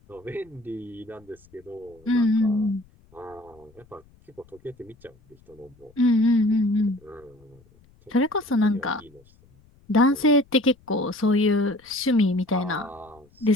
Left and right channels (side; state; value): left; noise; rumble, 29 dB below the sound